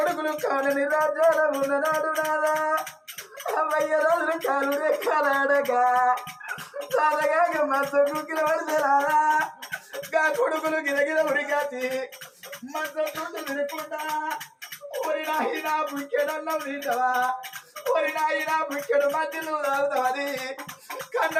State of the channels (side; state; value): both; identical; correlation 1.00